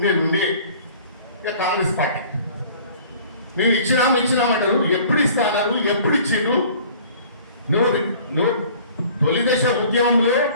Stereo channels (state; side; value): inverted; both; correlation -0.49